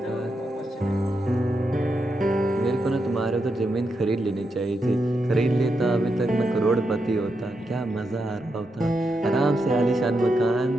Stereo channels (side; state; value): both; normal; correlation 0.85